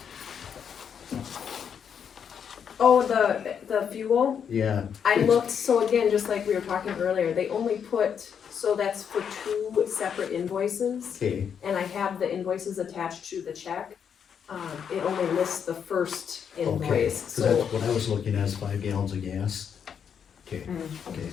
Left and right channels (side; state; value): right; quieter; 7.6 dB